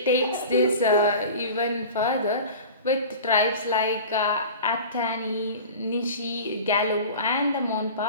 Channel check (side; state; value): both; inverted; correlation -0.36